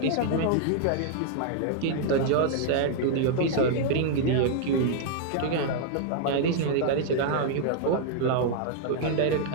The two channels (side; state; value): both; different; correlation -0.01